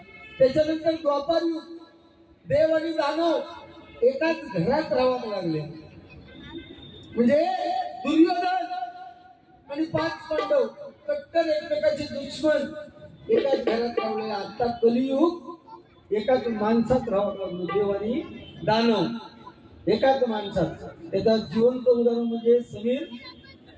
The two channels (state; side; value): identical; both; correlation 1.00